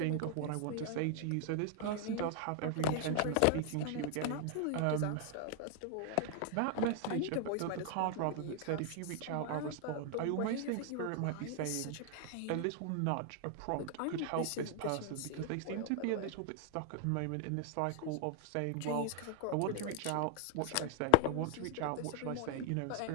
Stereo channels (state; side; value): different; both; correlation 0.00